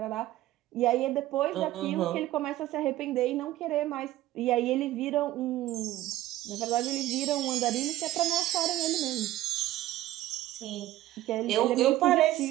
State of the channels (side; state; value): left; quieter; 15.0 dB